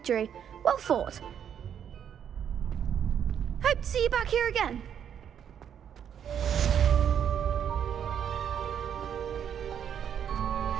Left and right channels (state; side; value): quieter; left; 8.7 dB